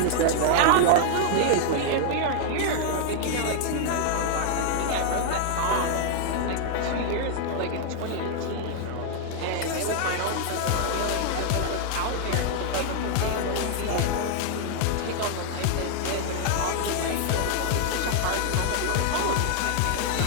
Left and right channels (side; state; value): both; different; correlation 0.00